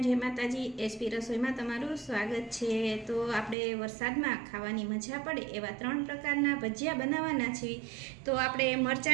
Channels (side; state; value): left; drops out; at 3.6 s